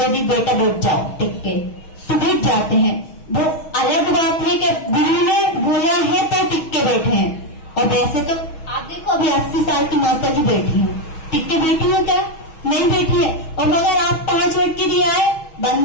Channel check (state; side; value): late; right; 6.3 ms